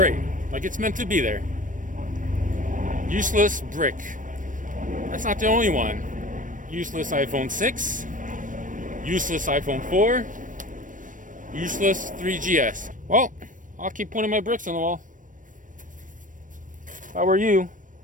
Like it's meant to be there. Useless brick. That's not the only one. Useless iPhone 6. Useless iPhone 4. Useless 3GS. Well, I'll keep putting my bricks on the wall. If I were you,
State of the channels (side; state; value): left; late; 0.38 ms